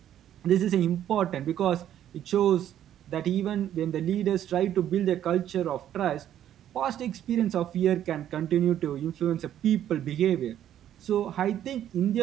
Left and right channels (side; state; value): left; quieter; 11.0 dB